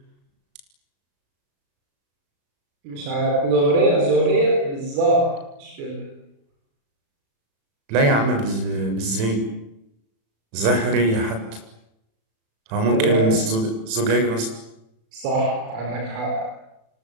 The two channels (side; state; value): left; late; 36 ms